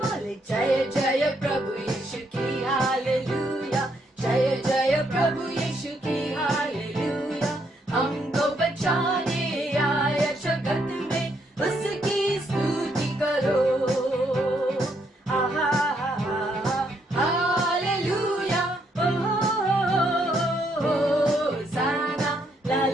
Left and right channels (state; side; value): normal; both; correlation 0.74